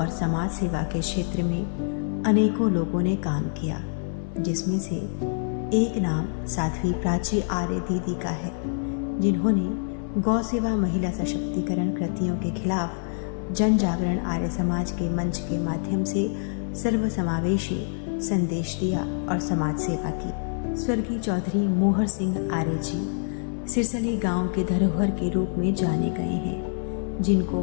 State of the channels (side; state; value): right; silent; 58 dB below the other